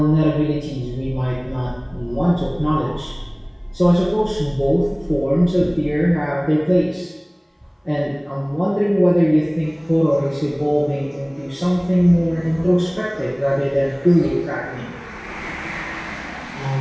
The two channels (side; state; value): both; identical; correlation 1.00